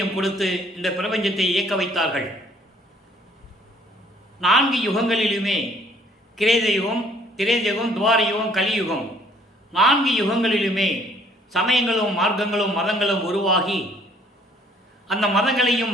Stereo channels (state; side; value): normal; both; correlation 0.60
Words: கொடுத்து இந்த பிரபஞ்சத்தை இயக்க வைத்தார்கள். 4 யுகங்களிலுமே கிரேதயுகம், திரேதயுகம், துவாரயுகம், கலியுகம் 4 யுகங்களிலுமே சமயங்களும் மார்க்கங்களும் மதங்களும் உருவாகி அந்த மதங்களையும்